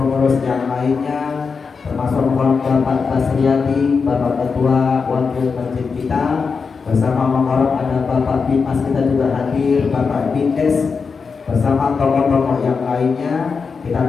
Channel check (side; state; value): right; quieter; 5.2 dB